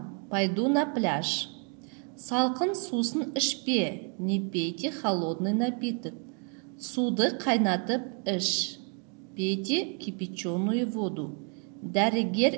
Пойду на пляж. Салқын сусын ішпе. Не пейте холодный напиток. Суды қайнатып іш. Пейте кипяченую воду.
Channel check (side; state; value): left; quieter; 39.6 dB